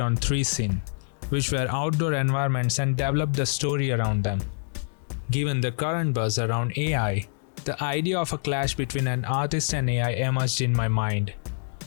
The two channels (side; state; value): right; silent; digital silence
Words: 3 scenes, which were outdoor environments, and developed the story around them. Given the current buzz around AI, the idea of a clash between an artist and AI emerged in my mind,